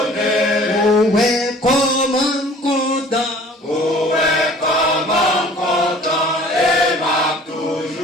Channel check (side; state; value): both; normal; correlation 0.49